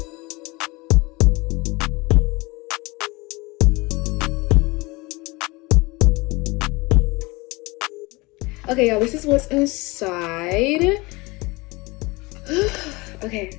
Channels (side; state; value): right; quieter; 24.0 dB